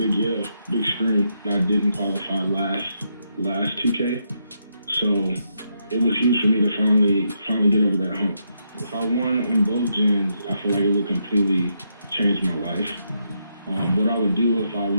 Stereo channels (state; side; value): inverted; both; correlation -0.80